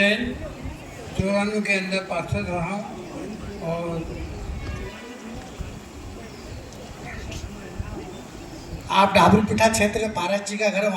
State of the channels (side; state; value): both; identical; correlation 1.00